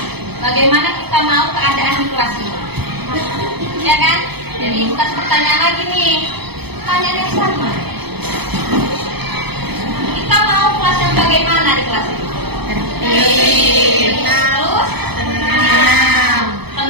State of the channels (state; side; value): late; left; 0.98 ms